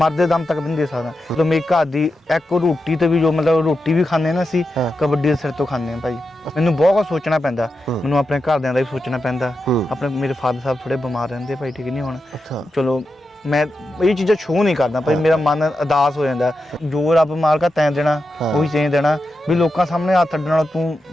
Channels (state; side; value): normal; both; correlation 0.88